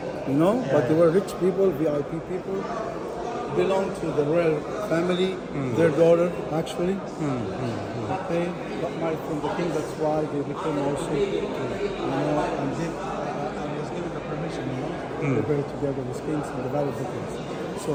you know, but they were rich people, VIP people, belonged to the royal family. Their daughter, actually, they got married from the king. That's why they became also, you know, and was given the permission, you know, to bury together with kings in the Valley of the Kings. So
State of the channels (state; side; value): identical; both; correlation 1.00